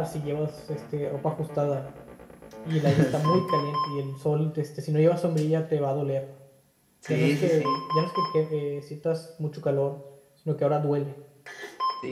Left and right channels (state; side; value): identical; both; correlation 1.00